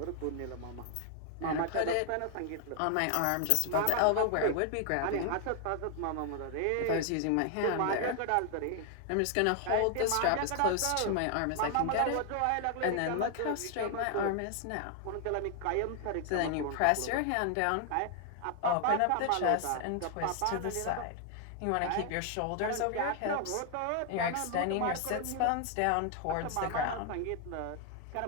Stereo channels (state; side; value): different; both; correlation 0.00